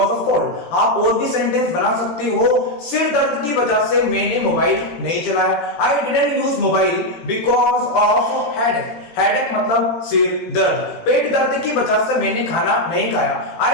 of cold. आप और भी सेंटेंस बना सकते हो, सिर दर्द की वजह से मैंने मोबाइल नहीं चलाया, I didn't use mobile because of headache. Headache मतलब सिर दर्द, पेट दर्द की वजह से मैंने खाना नहीं खाया, I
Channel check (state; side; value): late; right; 17 ms